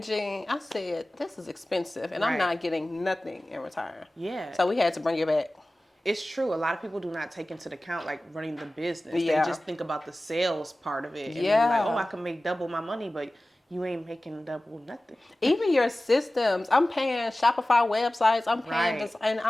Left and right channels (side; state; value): both; normal; correlation 0.97